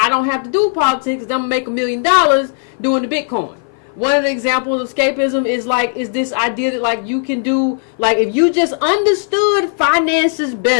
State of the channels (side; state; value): right; silent; 56 dB below the other